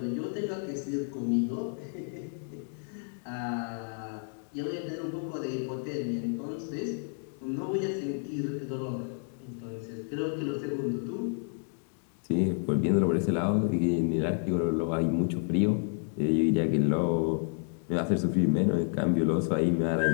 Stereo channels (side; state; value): right; silent; 55 dB below the other